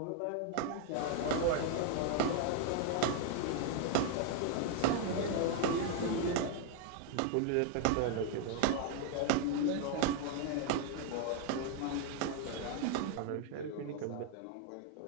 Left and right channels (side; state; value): both; different; correlation 0.00